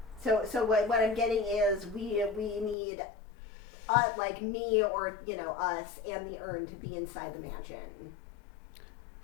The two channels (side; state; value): right; drops out; at 2.8 s